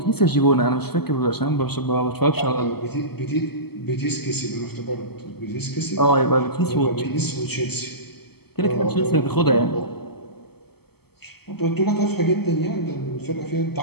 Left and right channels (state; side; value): late; right; 0.96 ms